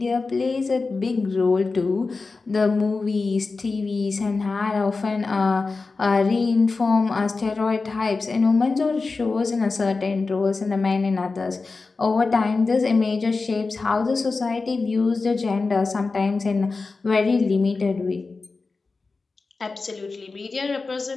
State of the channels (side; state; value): right; quieter; 4.0 dB